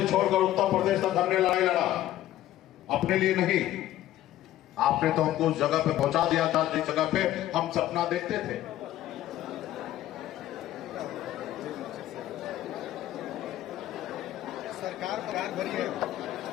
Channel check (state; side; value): quieter; right; 13.7 dB